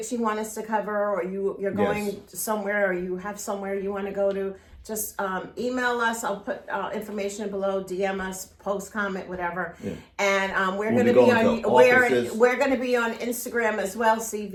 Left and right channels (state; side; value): identical; both; correlation 1.00